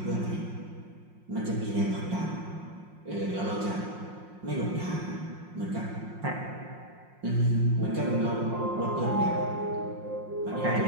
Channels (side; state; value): left; late; 5.6 ms